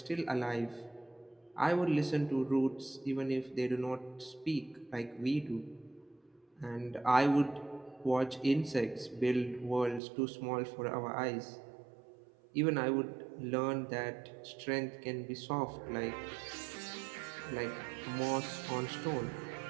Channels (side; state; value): left; drops out; at 10.0 s